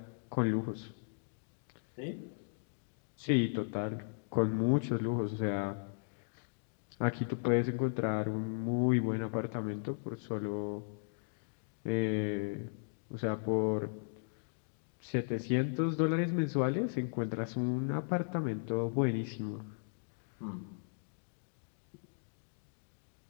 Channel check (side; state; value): right; silent; digital silence